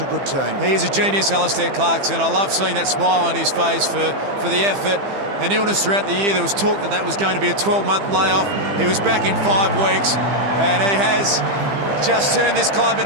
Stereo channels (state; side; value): late; left; 15 ms